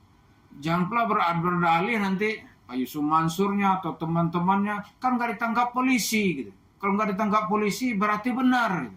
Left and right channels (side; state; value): both; identical; correlation 1.00